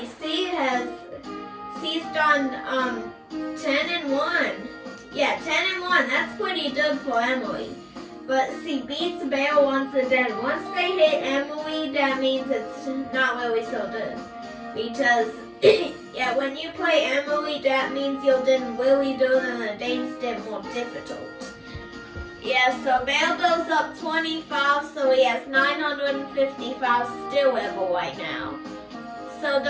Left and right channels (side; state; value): both; identical; correlation 1.00